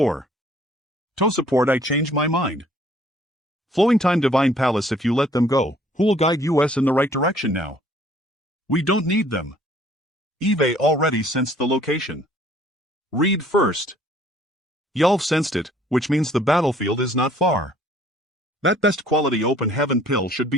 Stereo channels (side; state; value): both; normal; correlation 0.58